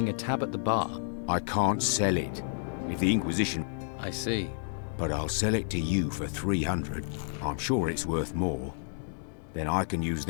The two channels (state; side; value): silent; right; digital silence